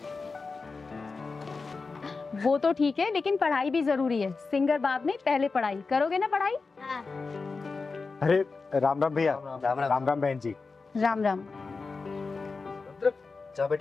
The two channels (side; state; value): right; quieter; 4.3 dB